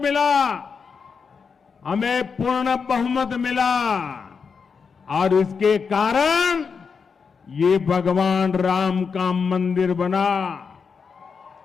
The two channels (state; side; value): quieter; right; 5.7 dB